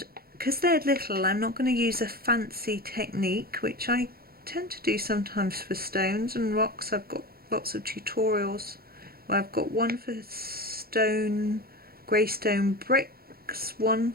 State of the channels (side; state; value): left; late; 0.44 ms